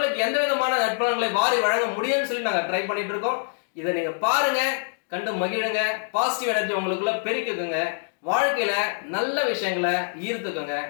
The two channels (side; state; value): right; silent; digital silence